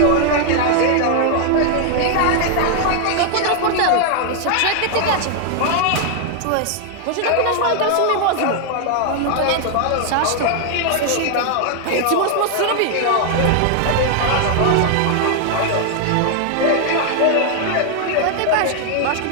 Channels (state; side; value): different; both; correlation 0.00